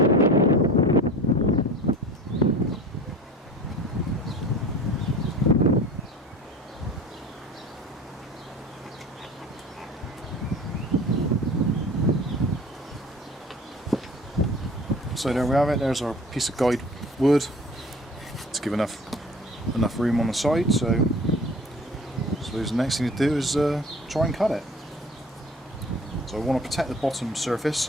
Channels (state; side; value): normal; both; correlation 0.42